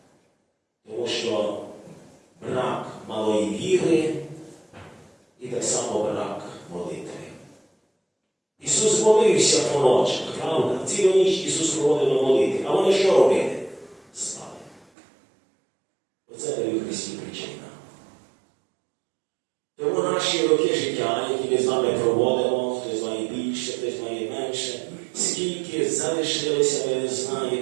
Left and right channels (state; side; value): drops out; left; at 14.9 s